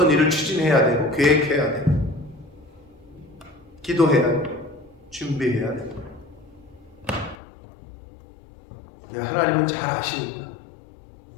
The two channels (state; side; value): drops out; right; at 7.4 s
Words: 일을 추진해야 되고 계획해야 되고 기도해야 되고 준비해야 되고. 하나님은 잘 아시니까.